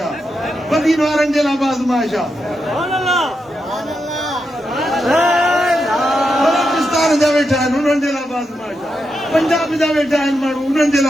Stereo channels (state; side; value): normal; both; correlation 0.85